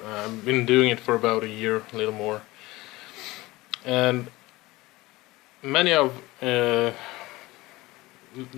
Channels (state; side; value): quieter; right; 19.9 dB